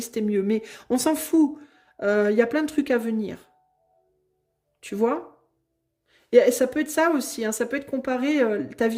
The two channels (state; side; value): identical; both; correlation 1.00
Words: mieux. Mais on s'en fout. Il y a plein de trucs à venir. Tu vois? Et ça peut être ça aussi, hein, ça peut être comparer ta